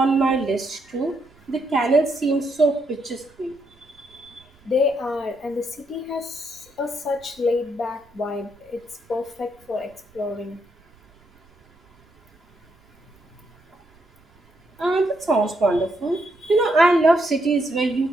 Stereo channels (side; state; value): right; noise; rumble, 30 dB below the sound